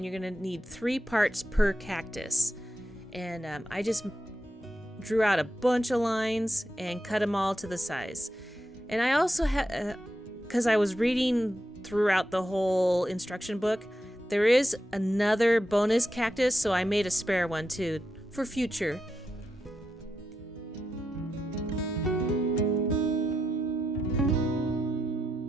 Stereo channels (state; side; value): normal; both; correlation 0.86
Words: you're going to need 3 parts per cactus. And I just drew out a bunch of lines and cut them all to the size. And I also had, because I was reading throughout the whole instruction book, there is another bonus cactus, so I made a spare one too for future.